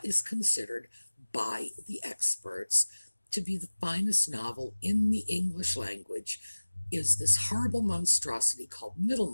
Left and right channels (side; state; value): both; inverted; correlation -1.00